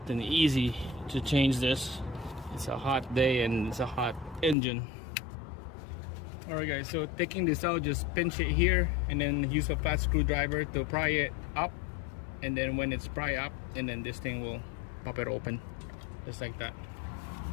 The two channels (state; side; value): drops out; right; at 4.5 s